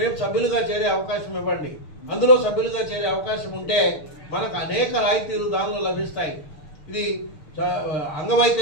సభ్యులుగా చేరే అవకాశం ఇవ్వండి. అందులో సభ్యులుగా చేరే అవకాశం ఉంటే మనకు అనేక రాయితీలు దానిలో లభిస్తాయి. ఇది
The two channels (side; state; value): right; late; 6.6 ms